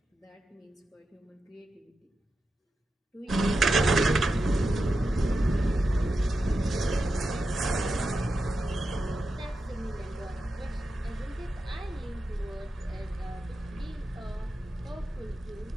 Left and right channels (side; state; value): both; normal; correlation 0.89